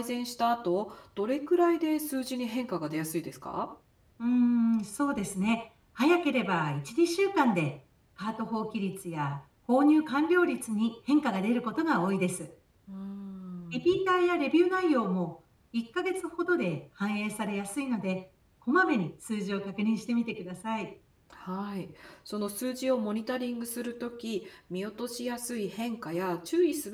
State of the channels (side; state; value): both; identical; correlation 1.00